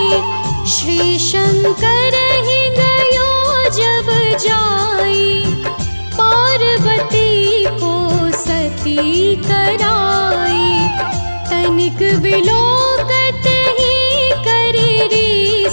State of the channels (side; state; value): both; inverted; correlation -1.00